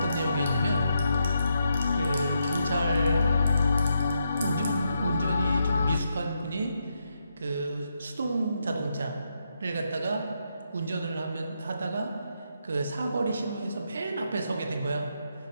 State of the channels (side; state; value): both; inverted; correlation -0.81